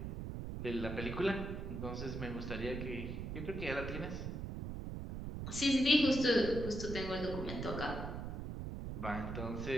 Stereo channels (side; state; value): right; noise; rumble, 5 dB below the sound